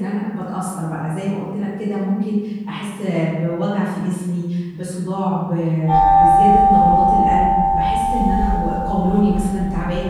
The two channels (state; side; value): identical; both; correlation 1.00